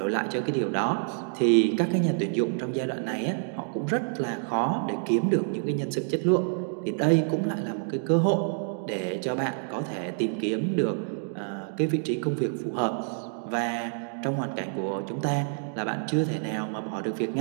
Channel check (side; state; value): left; silent; 60 dB below the other